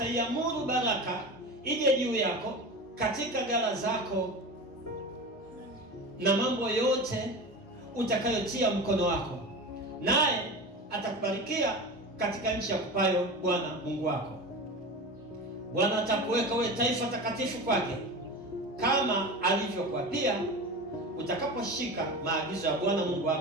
baraka ije juu yako katika ghala zako na mambo yote utakayotia mkono wako, naye atakubarikia katika nchi ya kupayo Bwana Mungu wako. Bwana atakuweka wewe taifa takatifu kwake, kama alivyokuapia, utakaposhika maagizo ya Bwana Mungu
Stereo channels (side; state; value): both; normal; correlation 0.29